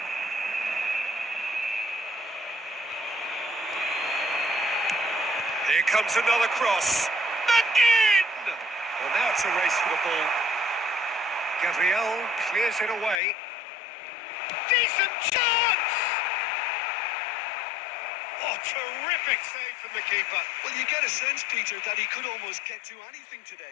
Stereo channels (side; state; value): right; drops out; at 13.2 s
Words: Here comes another cross. Again! Well, now it's a race for the ball. Gabriel clears it away. Decent chance! Oh, terrific save from the keeper. Well, you get a sense, Peter, that he could almost get to anything